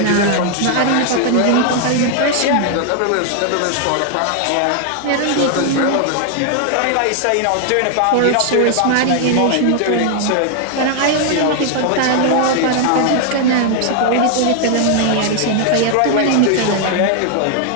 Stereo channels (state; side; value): different; both; correlation 0.00